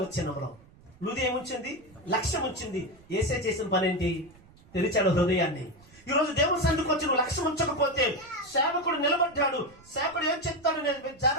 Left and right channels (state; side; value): noise; right; rumble, 26 dB below the sound